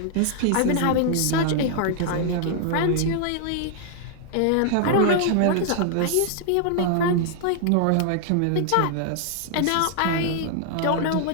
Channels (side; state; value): both; different; correlation 0.00